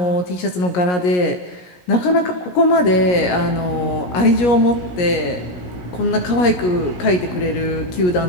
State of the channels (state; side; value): late; right; 17 ms